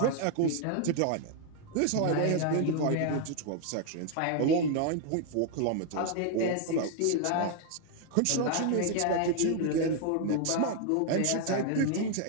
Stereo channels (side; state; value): both; different; correlation 0.00